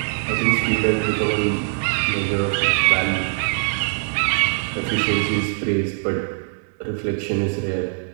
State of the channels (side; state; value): left; silent; digital silence